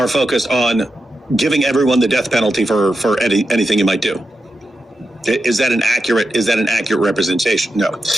focused on giving everyone the death penalty for anything you might do. Is that an accurate representation? No.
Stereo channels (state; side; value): normal; both; correlation 0.89